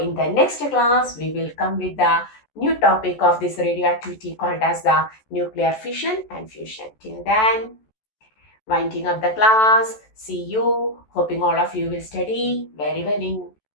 the next class, we will come with the new topic of this radioactivity called as the nuclear fission and fusion. Till then, winding up the class. See you. Hoping all of you will study very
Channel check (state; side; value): late; right; 14 ms